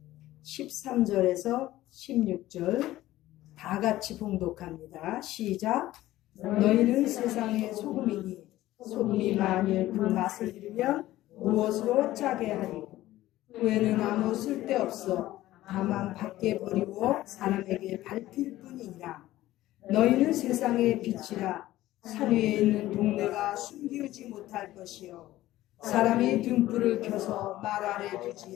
13절에서 16절 다 같이 봉독합니다. 시작. 너희는 세상의 소금이니 소금이 만일 그 맛을 잃으면 무엇으로 짜게 하리. 후에는 아무 쓸데없어 다만 밖에 버리고 사람에게 밟힐 뿐이니라. 너희는 세상의 빛이라. 산 위에 있는 동네가 숨기우지 못할 것이요 사람이 등불을 켜서 말 아래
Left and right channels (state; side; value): quieter; right; 15.6 dB